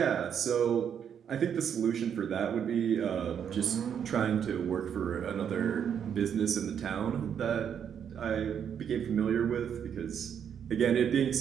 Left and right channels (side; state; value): left; quieter; 8.2 dB